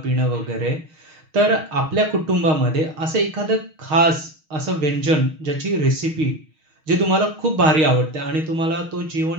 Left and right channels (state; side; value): late; left; 6.4 ms